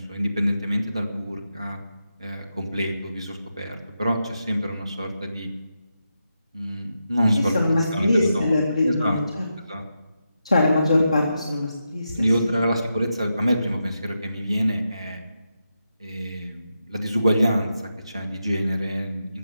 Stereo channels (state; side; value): inverted; both; correlation -0.87